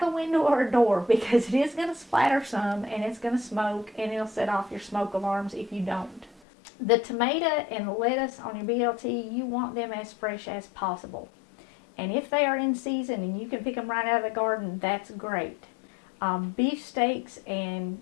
a window or a door, because it is going to splatter some and it's going to smoke, and it'll set off your smoke alarms if you don't. The tomato and the lettuce on your BLT, you want them as fresh as possible. And if they are in season and you can pick them right out of the garden, that's great. Beef steaks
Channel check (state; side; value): drops out; right; at 6.4 s